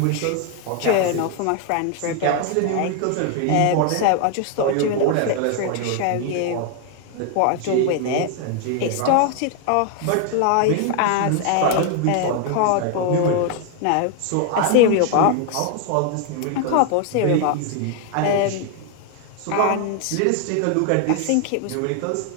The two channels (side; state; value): both; different; correlation 0.00